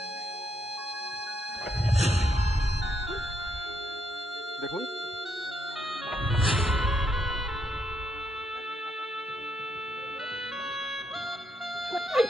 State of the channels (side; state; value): both; normal; correlation 0.78